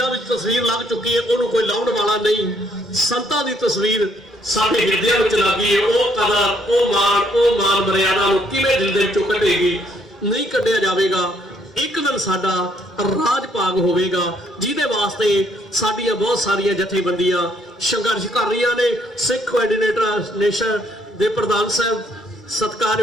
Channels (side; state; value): both; normal; correlation 0.68